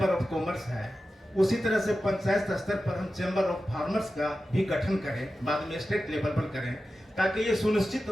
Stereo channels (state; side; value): normal; both; correlation 0.93